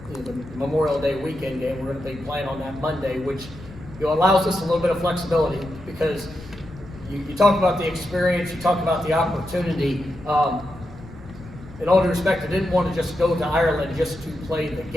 you know, the Memorial Day weekend game. We're going to be playing on that Monday, which, you know, allows us a little bit of flexibility, because you talk about the experience, you talk about the opportunity. In all due respect, I didn't want to just go to Ireland just to play the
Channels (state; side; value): noise; left; rumble, 17 dB below the sound